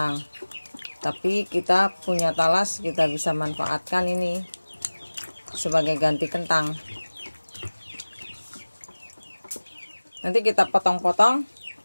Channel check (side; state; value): both; inverted; correlation -1.00